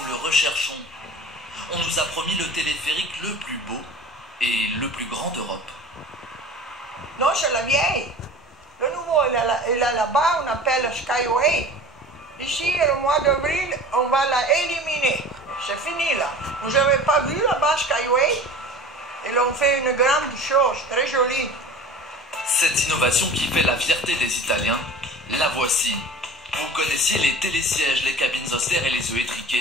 le recherchons. On nous a promis le téléphérique le plus beau et le plus grand d'Europe. Non, c'est la vieille. Le nouveau, il est là-bas, on appelle Skyway. Ici, le mois d'avril, on va la éliminer. C'est fini là. Vous n'avez pas vu là-bas Skyway? Ils ont fait une grande chose, très jolie. Cette innovation qui fait la fierté des Italiens, la voici. Vous connaissiez les télésièges, les cabines austères et les œufs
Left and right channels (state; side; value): normal; both; correlation 0.39